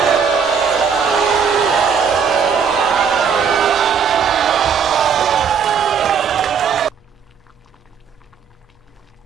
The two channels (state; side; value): quieter; left; 6.7 dB